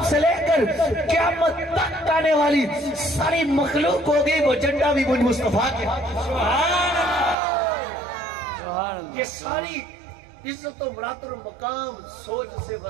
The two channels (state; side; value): drops out; left; at 7.4 s